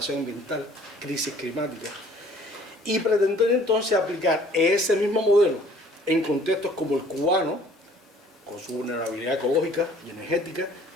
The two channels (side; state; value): both; normal; correlation 0.55